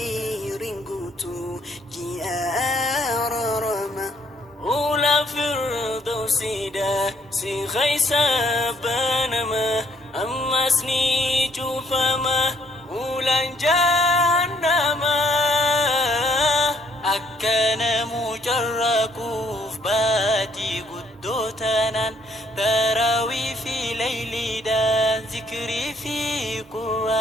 قوتو جي رما أولى فردوسي دا سي خيسا بانما أما سني جوفما أولى جهنما أكان مجركوف باتي قدوتنا تراوي في ليلي دا ذكري في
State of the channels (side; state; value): both; normal; correlation 0.66